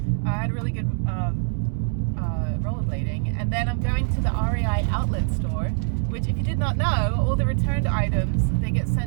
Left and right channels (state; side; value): silent; left; 63 dB below the other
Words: I had a really good rollerblading, and then I'm going to the REI outlet store, which, if you did not know, all the returned items, they get